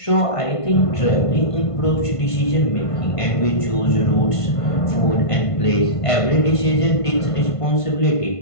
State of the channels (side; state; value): right; late; 1.5 ms